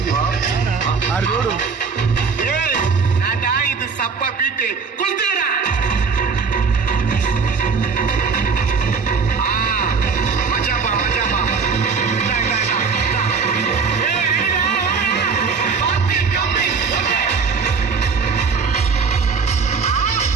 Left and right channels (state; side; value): quieter; left; 5.3 dB